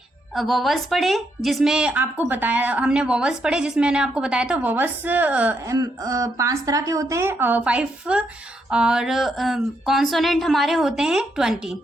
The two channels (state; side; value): normal; both; correlation 0.78